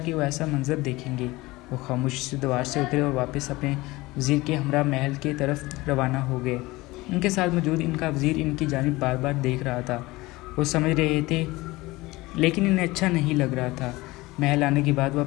وہ ایسا منظر دیکھیں گے۔ وہ خاموشی سے دیوار سے اترے اور واپس اپنے وزیر کے ہمراہ محل کی طرف روانہ ہو گئے۔ ان کے ساتھ موجود ان کا وزیر ان کی جانب بار بار دیکھ رہا تھا۔ وہ سمجھ رہے تھے، لیکن انہیں اچھا نہیں لگ رہا تھا۔ محل آنے کے بعد وہ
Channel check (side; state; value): right; quieter; 20.6 dB